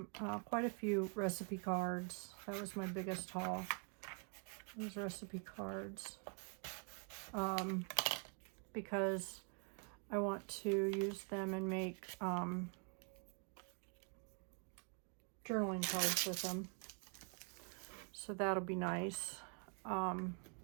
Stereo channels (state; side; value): quieter; left; 39.0 dB